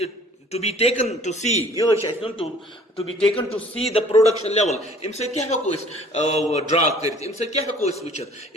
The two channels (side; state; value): both; normal; correlation 0.53